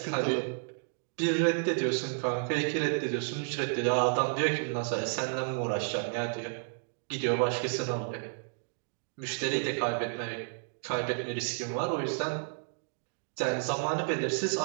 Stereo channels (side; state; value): left; silent; digital silence